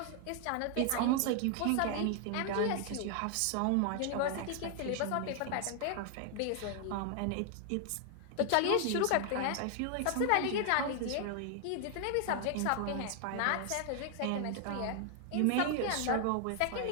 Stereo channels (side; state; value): both; different; correlation 0.00